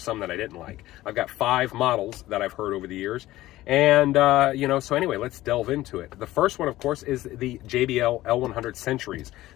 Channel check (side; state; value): right; quieter; 16.1 dB